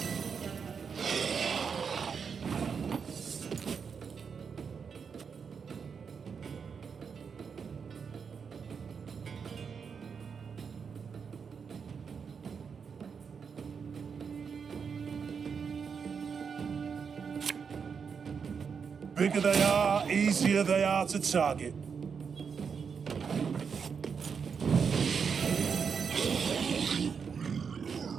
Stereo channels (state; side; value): quieter; left; 6.2 dB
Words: Bigger they are, easier they are to target.